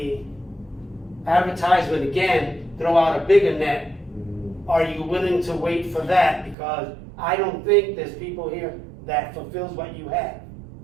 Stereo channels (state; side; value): drops out; left; at 6.6 s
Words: advertisement again, throw out a bigger net. Are you willing to wait for that? Because I don't think there's people here that fulfills what you have,